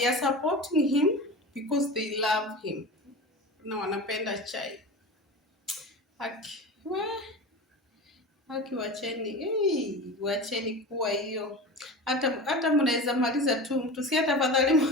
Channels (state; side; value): normal; both; correlation 0.30